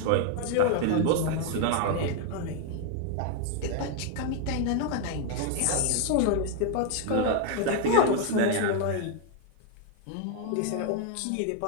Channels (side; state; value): both; different; correlation 0.00